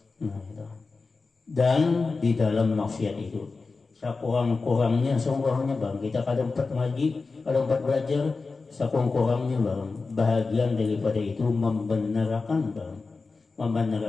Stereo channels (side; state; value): right; quieter; 4.1 dB